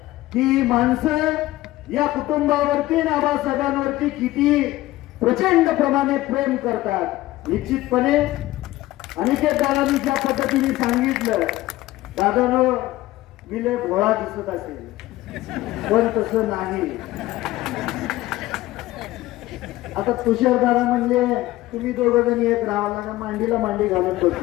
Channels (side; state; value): right; quieter; 17.0 dB